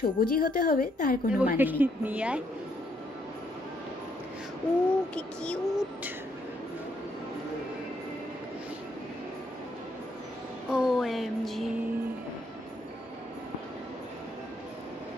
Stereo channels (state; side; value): normal; both; correlation 0.73